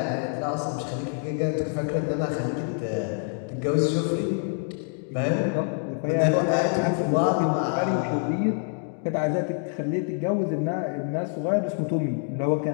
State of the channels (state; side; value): silent; right; 61 dB below the other